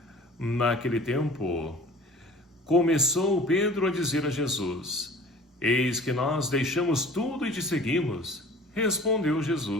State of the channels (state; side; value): normal; both; correlation 0.45